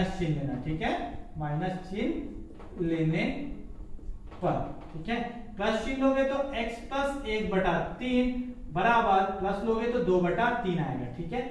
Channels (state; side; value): identical; both; correlation 1.00